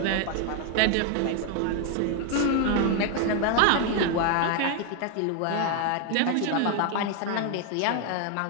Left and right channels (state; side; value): different; both; correlation 0.01